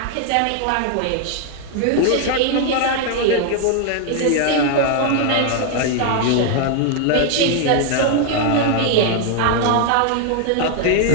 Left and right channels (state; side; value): different; both; correlation 0.00